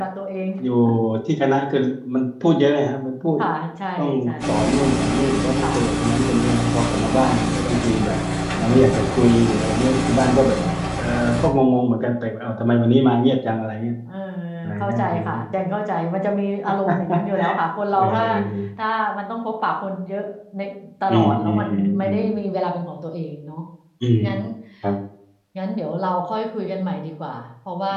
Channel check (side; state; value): both; identical; correlation 1.00